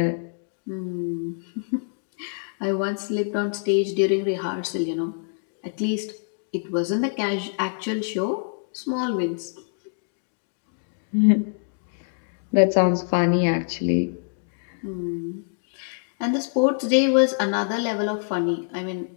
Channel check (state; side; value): silent; right; digital silence